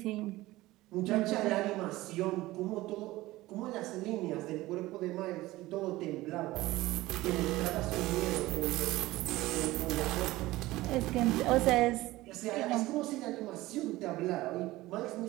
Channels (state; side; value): quieter; left; 18.1 dB